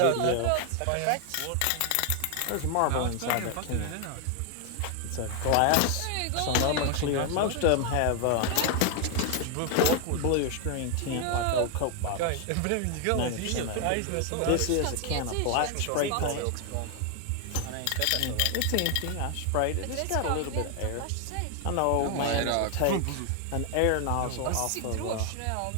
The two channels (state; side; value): different; both; correlation 0.00